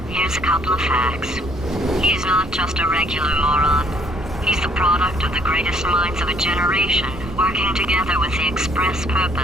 here's a couple of facts. He's not just a regular moron. He's the product of the greatest minds of a generation, working together with the express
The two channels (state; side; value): normal; both; correlation 0.64